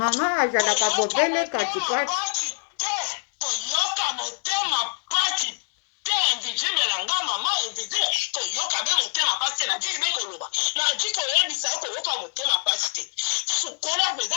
azalaka bobele katikati. Toyoka motema pasi te invisible na nga mama invisible toyoka be motema pasi na jiki bekoloba na jiki oyebisa yo koyoka motema pasi te sukola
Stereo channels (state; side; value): silent; right; digital silence